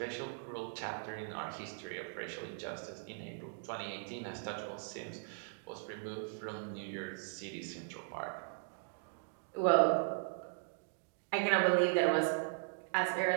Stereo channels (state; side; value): silent; left; digital silence